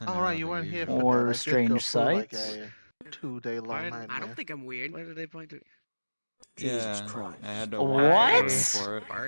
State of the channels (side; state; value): both; inverted; correlation -1.00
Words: All right, you weren't here for Or that. I did strange go through like sights? a 2-day long nightmare. I don't think I'm weird. Why did they point to? Jesus Christ! I had to What? walk for it.